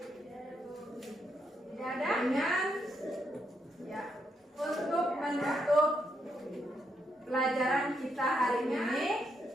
Tidak ada? Dengan ya, untuk menutup pelajaran kita hari ini,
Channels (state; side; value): normal; both; correlation 0.79